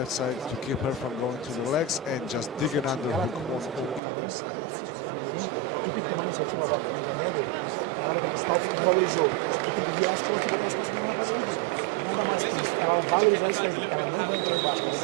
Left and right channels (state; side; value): drops out; left; at 4.0 s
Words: side to keep her from going to the legs, and just dig an underhook on either side to free yourself from her hands, because standing like this up against the cage is not going to win Cerezo a fight. And Georg, let's just educate the fans a little bit on how the judges will be